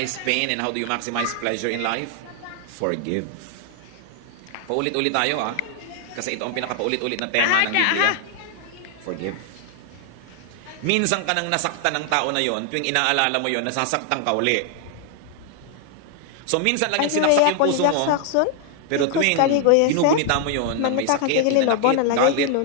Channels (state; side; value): different; both; correlation 0.00